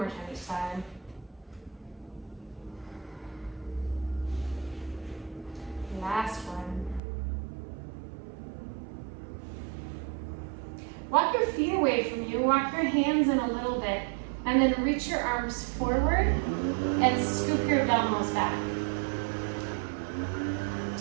time each side. Last one. Walk your feet away from you. Walk your hands in a little bit. And then reach your arms forward and scoop your abdominals back.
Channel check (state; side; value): drops out; left; at 7.0 s